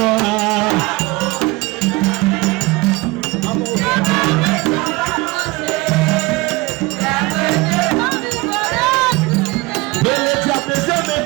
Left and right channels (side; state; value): left; quieter; 22.7 dB